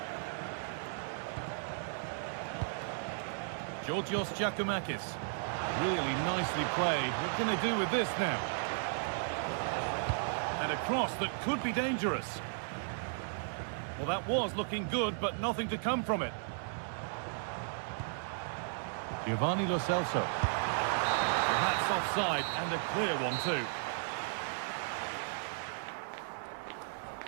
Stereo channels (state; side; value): silent; left; 54 dB below the other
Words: Georgios Giacomakis. Really nicely played. What can they do with this now? And a cross that could be dangerous. Well, that was looking good, but nothing to come from it. Giovanni Lo Celso. Well, that's offside, and a clear one too.